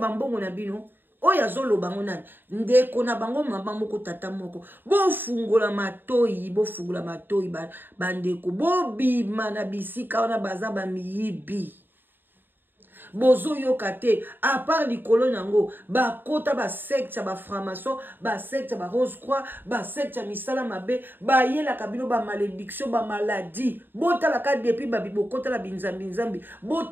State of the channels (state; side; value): late; left; 0.095 ms